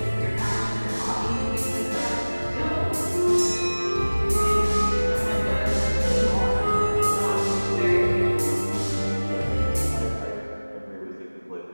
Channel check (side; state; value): both; inverted; correlation -1.00